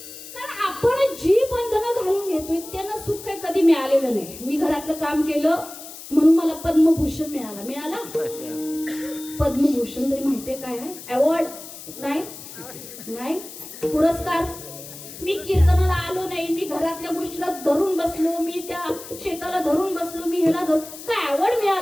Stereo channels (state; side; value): noise; left; hiss, 14 dB below the sound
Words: मिळालेलं नाही. मी घरातलं काम केलं म्हणून मला पद्मभूषण मिळाला. पद्मभूषण तरी माहितीये काय आहे? अवॉर्ड नाही, पुरस्कार. मी कीर्तनाला आलो नाही, मी घरातल्या गोष्टीला धरून बसलो, मी त्या शेताला धरून बसलो, मी ह्याला धरून, काय अवॉर्ड